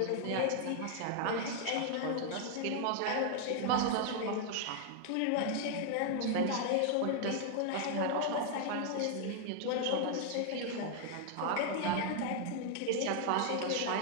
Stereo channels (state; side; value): different; both; correlation 0.00